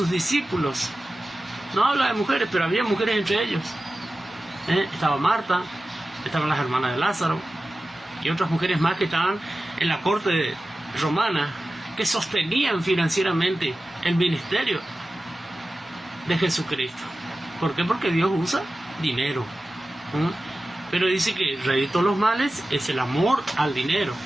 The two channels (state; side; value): normal; both; correlation 0.95